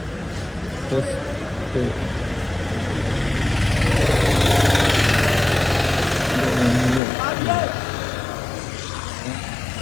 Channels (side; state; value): right; drops out; at 7.0 s